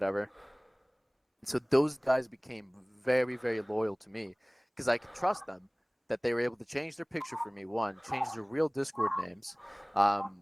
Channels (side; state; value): both; identical; correlation 1.00